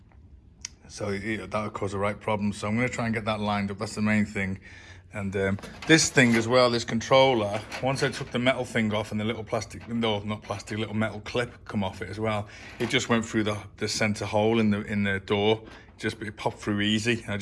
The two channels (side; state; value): both; identical; correlation 1.00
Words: cause a right problem. So I'm going to try and get that lined up. That's the main thing. And this thing as well, this controller, once I took the metal thing off and the little little metal clip come off it as well, it just went through the center hole in the door. It popped through easy. I